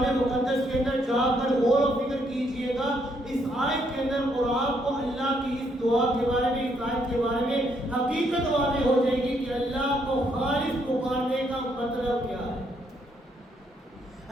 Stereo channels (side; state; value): both; normal; correlation 0.73